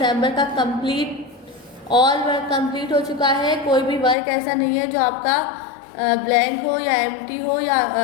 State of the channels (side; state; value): right; drops out; at 4.2 s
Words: का ऑल वर्क कंप्लीट हो चुका है। कोई भी वर्क ऐसा नहीं है जो आपका ब्लैंक हो या एम्प्टी हो या